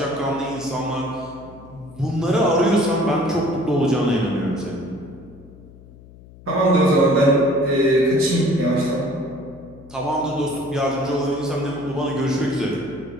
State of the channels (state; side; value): noise; left; hum, 21 dB below the sound